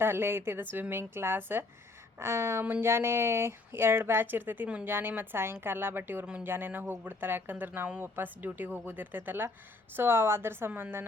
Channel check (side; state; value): right; quieter; 3.3 dB